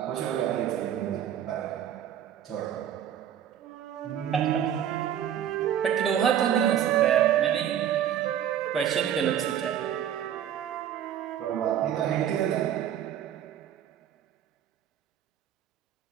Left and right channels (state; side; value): quieter; left; 10.0 dB